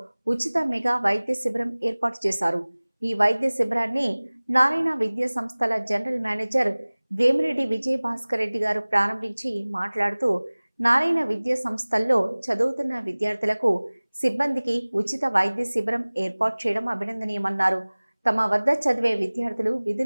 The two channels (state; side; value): inverted; both; correlation -1.00